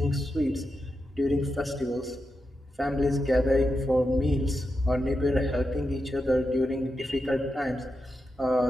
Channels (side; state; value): both; normal; correlation 0.88